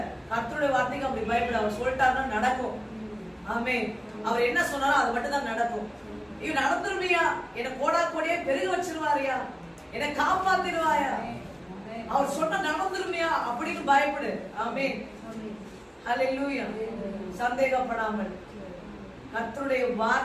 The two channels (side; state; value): both; identical; correlation 1.00